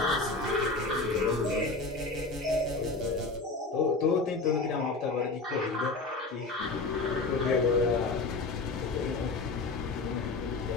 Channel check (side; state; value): right; quieter; 3.6 dB